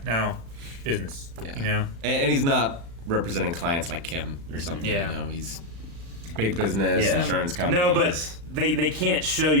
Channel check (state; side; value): late; left; 35 ms